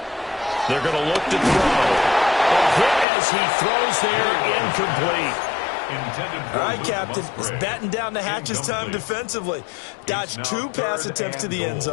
They're going to look to throw. A hit as he throws there, incomplete. All right, Captain. It's batting down the hatches time defensively. Dodged 2 pass attempts to the end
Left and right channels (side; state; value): right; drops out; at 3.1 s